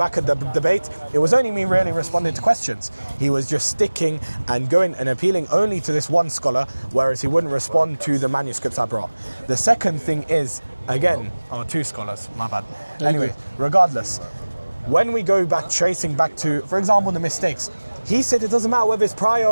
at the debate, it was only me really responding to questions. He was just sticking and going and appealing only to this one scholar, whereas he wouldn't respond to the manuscripts I brought. The second thing is, again, 2 scholars, my bad. Anyway, regardless, when we go back, tracing back to, for example, the mistakes, he said it doesn't matter whether it's prior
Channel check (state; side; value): inverted; both; correlation -1.00